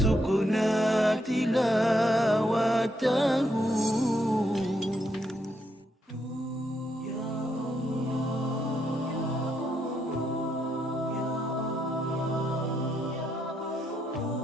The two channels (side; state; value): both; normal; correlation 0.79